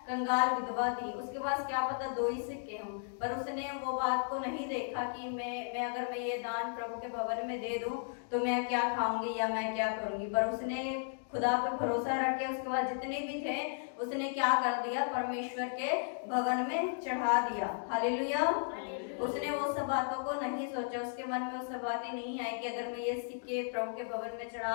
कंगाल विधवा थी, उसके पास क्या पता 2 ही सिक्के हों, पर उसने वो बात को नहीं देखा कि मैं अगर मैं ये दान प्रभु के भवन में दे दूं तो मैं क्या खाऊंगी या मैं क्या करूंगी, पर उसने खुदा पर भरोसा रख के उसके बाद जितने भी थे उसने क्या कर दिया, परमेश्वर के भवन में चढ़ा दिया। हालेलुया। उसने वो सब बातों को नहीं सोचा, उसके मन में वो सब बातें नहीं आई कि अगर मैं ये सिक्के प्रभु के भवन में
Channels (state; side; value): silent; right; digital silence